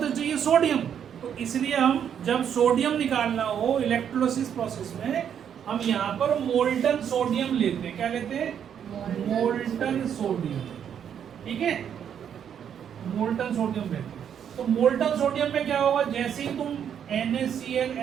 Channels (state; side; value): quieter; left; 8.6 dB